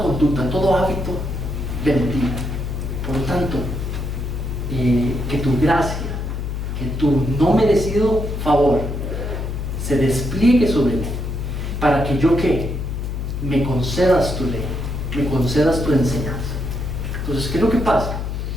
conducta, todo hábito de mentira. Por lo tanto, que tu gracia, que tu no merecido favor se despliegue sobre mí, para que yo me concedas tu ley, me concedas tu enseñanza. Entonces, ¿qué es lo que pasa?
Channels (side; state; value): left; noise; hum, 4 dB below the sound